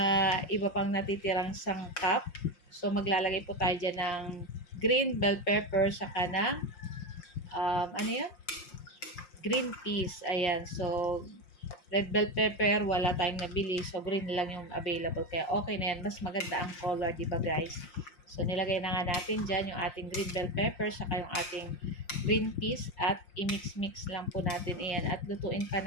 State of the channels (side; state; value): right; late; 5.6 ms